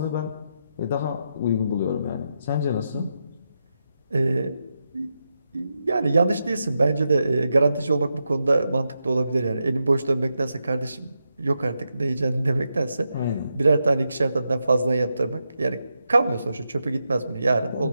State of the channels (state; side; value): inverted; both; correlation -0.86